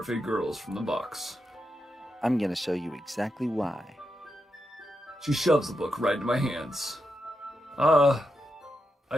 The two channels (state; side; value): normal; both; correlation 0.86